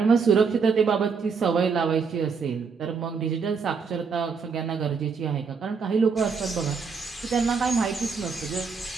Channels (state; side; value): quieter; left; 5.5 dB